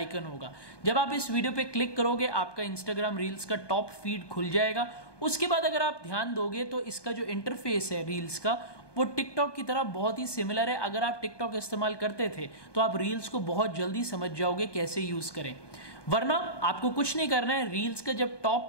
होगा। जब आप इस वीडियो पे क्लिक करोगे आपका इंस्टाग्राम रील्स का टॉप फीड खुल जाएगा। उसके बाद अगर आप ध्यान दोगे तो इसका जो इंटरफेस है रील्स का, वो टिकटॉक की तरह बहुत ही सिमिलर है। अगर आप टिकटॉक इस्तेमाल करते थे तो आप रील्स को बहुत जल्दी समझ जाओगे कैसे यूज करें। वरना आपको कुछ नहीं करना है। रील्स का जब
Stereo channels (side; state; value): right; late; 1.2 ms